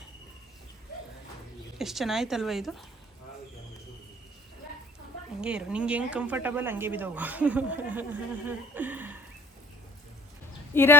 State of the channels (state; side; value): normal; both; correlation 0.51